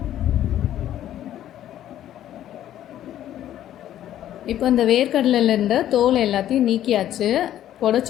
இப்போ இந்த வேர்க்கடலையில் இருந்த தோல் எல்லாத்தையும் நீக்கியாச்சு.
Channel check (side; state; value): right; quieter; 11.9 dB